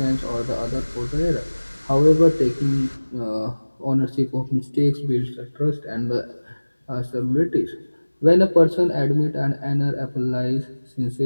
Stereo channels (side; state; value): both; inverted; correlation -1.00